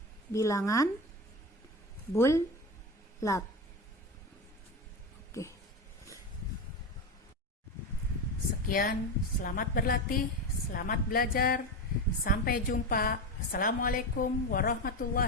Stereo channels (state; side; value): normal; both; correlation 0.19